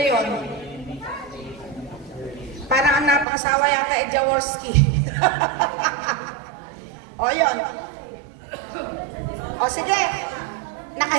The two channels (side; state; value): left; drops out; at 3.2 s